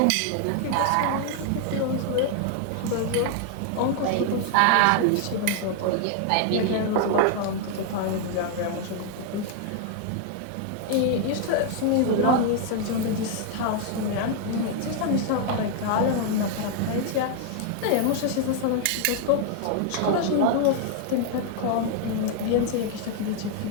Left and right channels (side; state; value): both; different; correlation 0.00